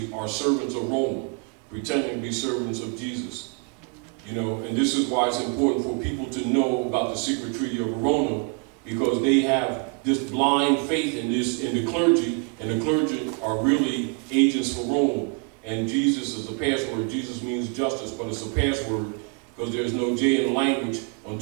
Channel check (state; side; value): quieter; left; 34.5 dB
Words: are servants of Rome, pretending to be servants of Jesus. You know, and this is why it's important for people to know about the Secret Treaty of Verona, because they have this blind faith in the clergy, and the clergy are really agents for Rome. And Jesus is the password. Jesus means justice, but it's a password because there's no J in the language